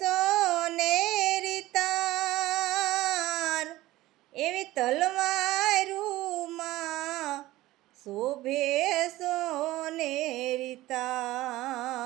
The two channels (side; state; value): left; quieter; 17.2 dB